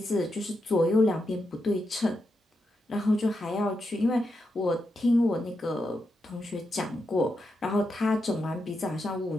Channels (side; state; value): both; normal; correlation 0.85